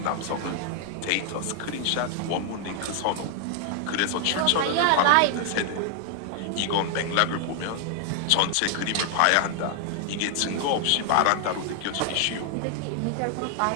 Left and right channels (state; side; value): different; both; correlation 0.00